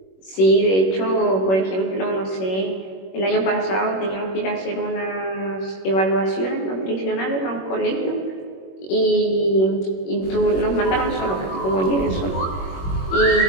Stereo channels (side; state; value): right; late; 21 ms